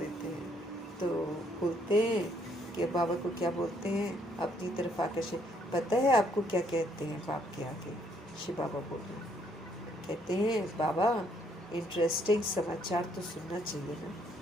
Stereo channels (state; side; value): normal; both; correlation 0.69